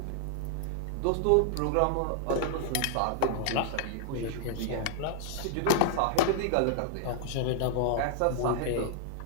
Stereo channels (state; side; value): different; both; correlation -0.01